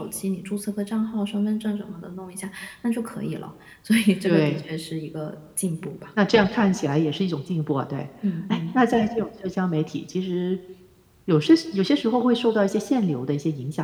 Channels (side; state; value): both; identical; correlation 1.00